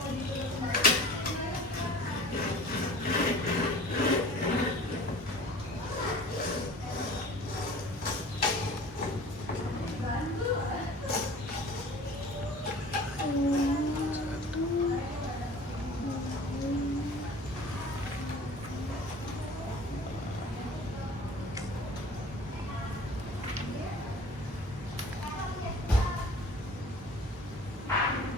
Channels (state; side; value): normal; both; correlation 0.44